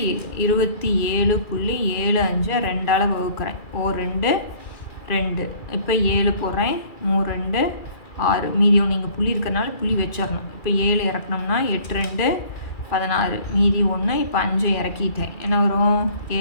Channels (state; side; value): late; right; 2.4 ms